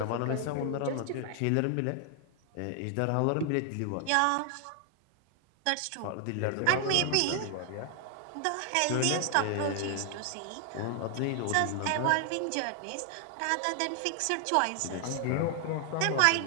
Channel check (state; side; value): different; both; correlation 0.00